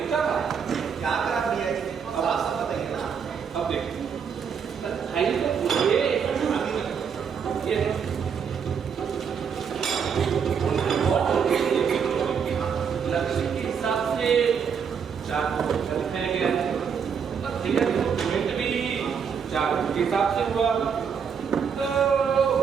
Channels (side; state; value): left; quieter; 6.9 dB